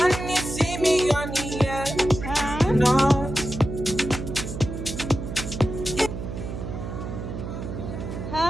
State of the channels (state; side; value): noise; right; hum, 7 dB below the sound